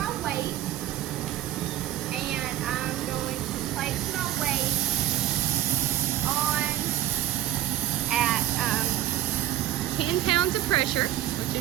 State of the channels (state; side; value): quieter; left; 13.3 dB